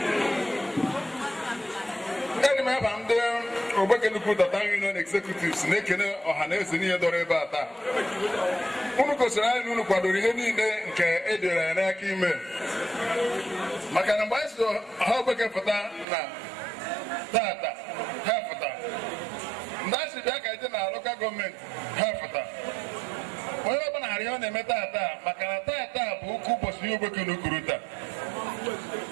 Eni ma bande Ogbeke na Ukuruta union executives na-ekene ọhaneze niile dọrọ ebe a taa unu gosiri anyị unu kwadoro ihe niile nke edere n'aka ime maka na mgbe anyị so ha Ogbeke pụta na tata ha pụta ndị asị bịa ka ije na local gọọmenti ha pụta onye ọbụla harị ọ na-eme tata maka na tata bụ ukwu ụbọchị Ogbeke na Ukuruta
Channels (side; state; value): left; drops out; at 16.1 s